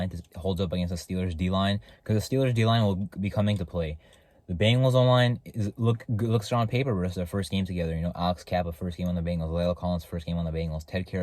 holds up against the Steelers D-line, because the Steelers D-line will be coming to play. The Bengals online looks strong on paper versus their first game together. Alex Kappa, first game on the Bengals. Layla Collins, first game on the Bengals. Ted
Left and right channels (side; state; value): both; identical; correlation 1.00